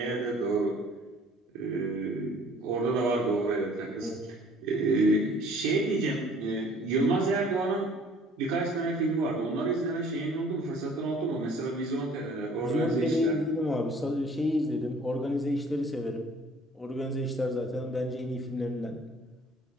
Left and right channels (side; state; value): both; normal; correlation 0.54